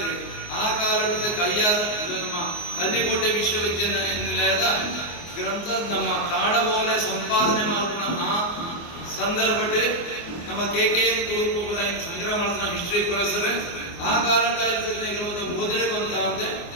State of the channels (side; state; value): right; late; 24 ms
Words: ಆ ಕಾಲದ ಕೈಯಾರ ನಮ್ಮ ಕಲ್ಲಿಕೋಟೆ ವಿಶ್ವವಿದ್ಯಾನಿಲಯದ ಗ್ರಂಥ ನಮ್ಮ ತಾಡಬೋಲೆ ಸಂಪಾದನೆ ಮಾಡ್ಕೊಂಡ ಆ ಸಂದರ್ಭ ನಮ್ಮ KKN ತುಳುಕು ಸಂಗ್ರಹ ಮಾಡಿದ ಹಿಸ್ಟ್ರಿ ಪ್ರೊಫೆಸರ್ ಆ ಕಾಲದ ಓದಿನ ಬಂತ ಅಂದ್ರೆ